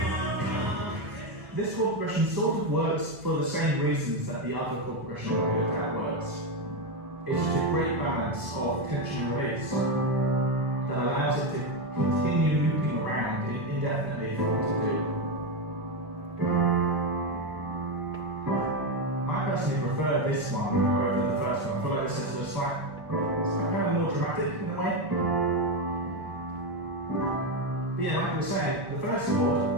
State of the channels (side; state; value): left; late; 1.4 ms